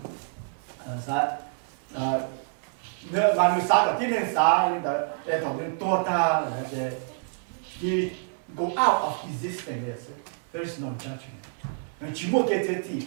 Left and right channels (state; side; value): silent; left; 60 dB below the other